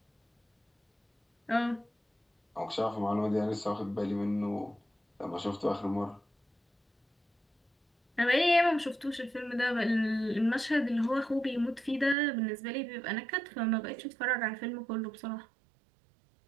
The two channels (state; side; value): drops out; left; at 12.2 s